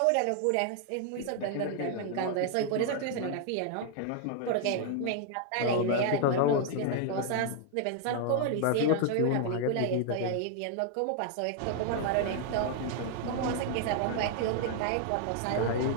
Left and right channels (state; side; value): different; both; correlation 0.00